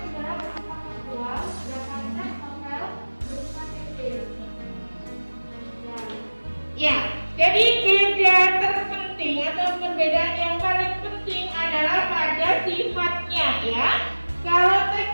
sejarah bersifat faktual, sedangkan teks novel bersifat fiktif. Ya, jadi beda terpenting atau perbedaan yang paling penting adalah pada sifatnya ya. Kalau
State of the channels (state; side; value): inverted; both; correlation -1.00